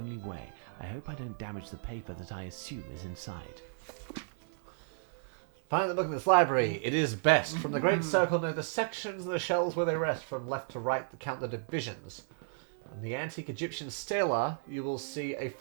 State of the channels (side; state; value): left; silent; digital silence